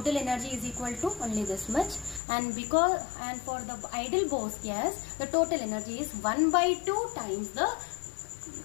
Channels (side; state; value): right; drops out; at 2.2 s